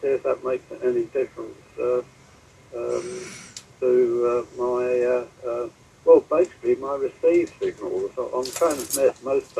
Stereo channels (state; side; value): identical; both; correlation 1.00